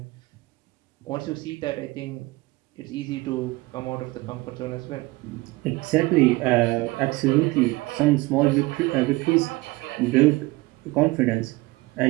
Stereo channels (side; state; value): left; quieter; 21.2 dB